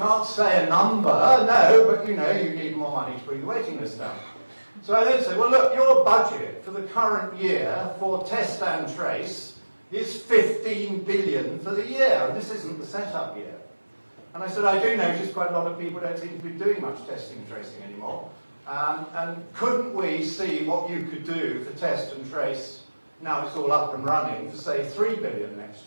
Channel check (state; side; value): inverted; both; correlation -1.00